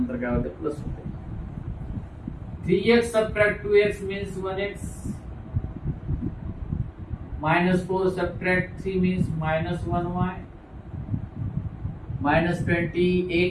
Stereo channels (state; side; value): identical; both; correlation 1.00